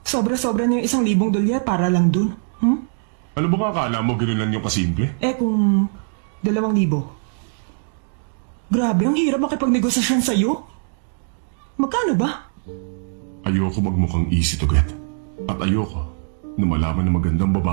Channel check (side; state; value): left; silent; digital silence